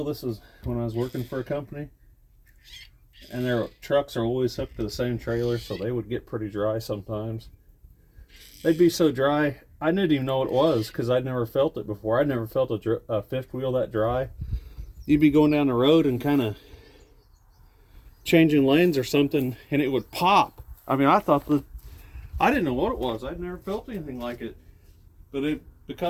this was when I was working for a company, and their trucks are always hooked to the same trailer, so they would get pretty dry sometimes. They'd be so dry, I didn't even know what it was because I'd never felt it before. I'd never felt a fifth wheel that dry. You'd be going down the road and kind of changing lanes or something, and it would pop. I mean, I didn't know what it was. I'd never felt anything like it, but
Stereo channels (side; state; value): both; identical; correlation 1.00